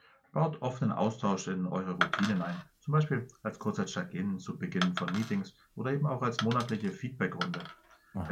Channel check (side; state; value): both; identical; correlation 1.00